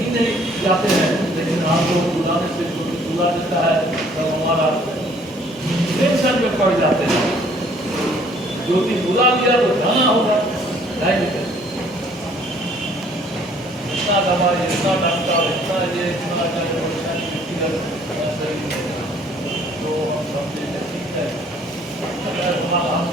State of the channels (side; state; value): both; normal; correlation 0.59